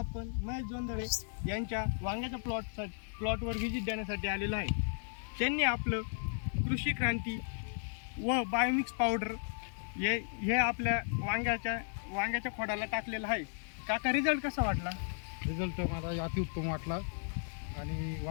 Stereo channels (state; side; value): silent; right; digital silence